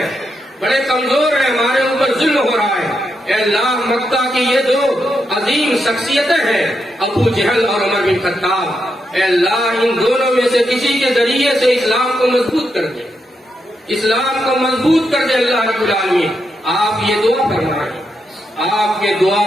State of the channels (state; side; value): normal; both; correlation 0.83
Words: بڑے کمزور ہیں، ہمارے اوپر ظلم ہو رہا ہے۔ اے اللہ، مکہ کی یہ دو عظیم شخصیتیں ہیں، ابو جہل اور عمر بن خطاب، اے اللہ، ان دونوں میں سے کسی کے ذریعے سے اسلام کو مضبوط کر دے، اسلام کو مضبوط کر دے اللہ رب العالمین۔ آپ یہ دعا فرمائیں۔ آپ کے دعا